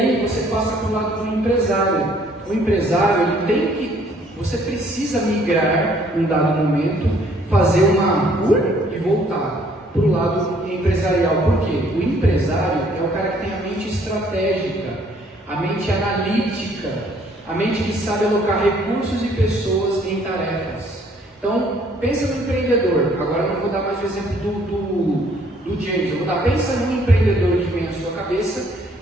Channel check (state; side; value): normal; both; correlation 0.62